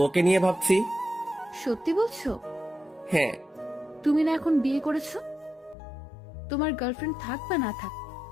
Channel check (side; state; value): right; drops out; at 5.8 s